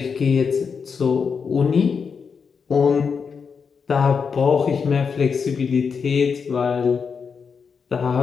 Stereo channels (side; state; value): right; quieter; 5.9 dB